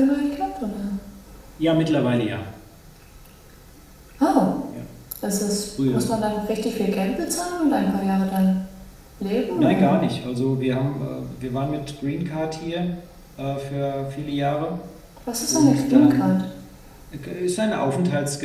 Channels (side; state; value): both; identical; correlation 1.00